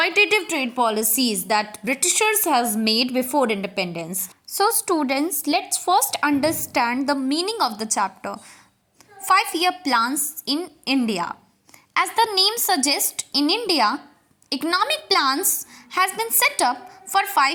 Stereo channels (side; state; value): both; identical; correlation 1.00